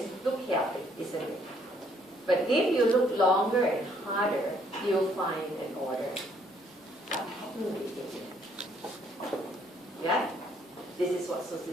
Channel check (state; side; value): normal; both; correlation 0.66